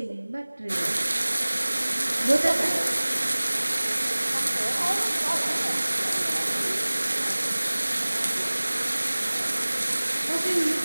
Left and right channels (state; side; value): inverted; both; correlation -1.00